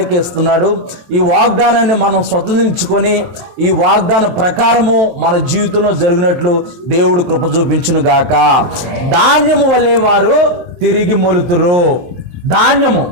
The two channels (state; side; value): late; left; 23 ms